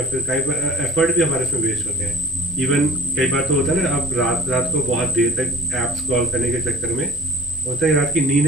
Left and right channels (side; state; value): both; normal; correlation 0.44